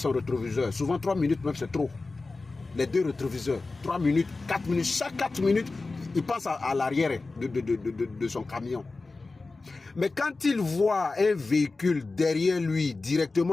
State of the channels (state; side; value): quieter; right; 3.6 dB